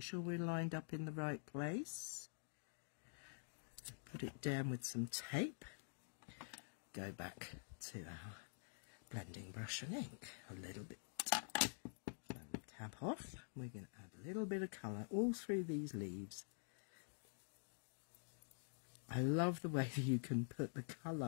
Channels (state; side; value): silent; right; digital silence